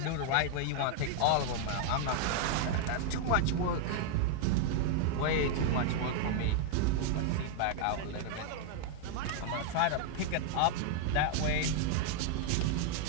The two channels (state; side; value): different; both; correlation 0.00